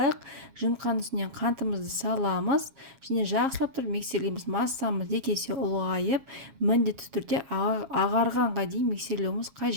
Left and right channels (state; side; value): late; left; 7.4 ms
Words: Жымқанның үстіне қантымызды саламыз. Және жақсылап тұрып миксерлейміз. Массамыз екі есе ұлғайып, міндетті түрде ағарғанға дейін миксерлеуіміз